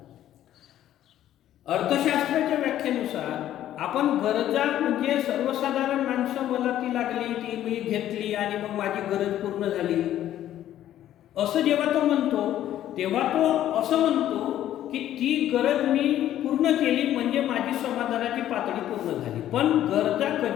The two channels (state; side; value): quieter; right; 12.2 dB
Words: अर्थशास्त्राच्या व्याख्येनुसार आपण गरजा म्हणजे सर्वसाधारण माणसं, मला ती लागली, ती मी घेतली आणि मग माझी गरज पूर्ण झाली, असं जेव्हा तो म्हणतो तेव्हा तो असं म्हणतो की ती गरज मी पूर्ण केली म्हणजे माझी समाधानाची पातळी पूर्ण झाली. पण गरजा